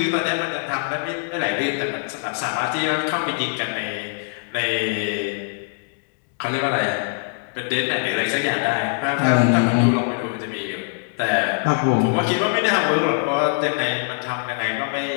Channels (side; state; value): right; silent; digital silence